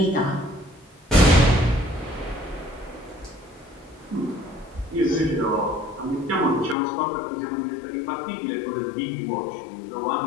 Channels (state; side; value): drops out; right; at 6.8 s